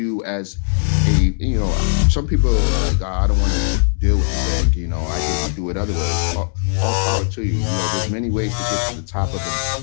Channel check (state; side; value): silent; right; digital silence